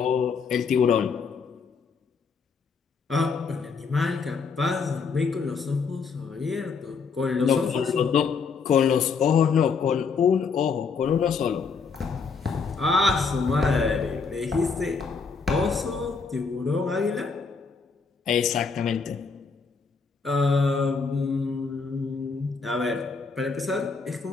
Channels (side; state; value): right; quieter; 5.2 dB